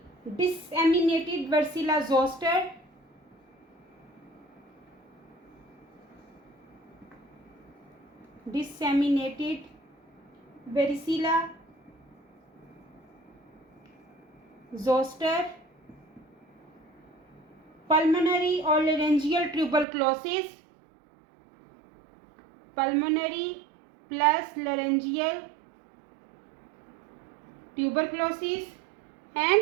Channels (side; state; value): left; drops out; at 19.9 s